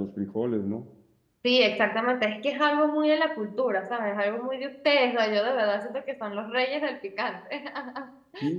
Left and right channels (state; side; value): identical; both; correlation 1.00